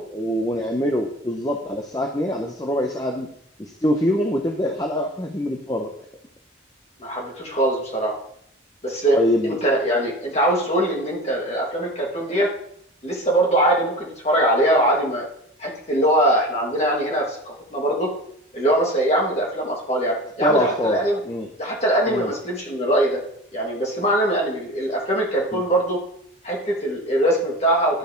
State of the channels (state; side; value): normal; both; correlation 0.35